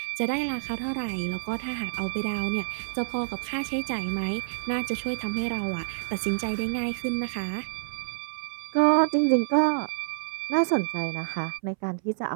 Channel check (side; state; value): left; silent; 59 dB below the other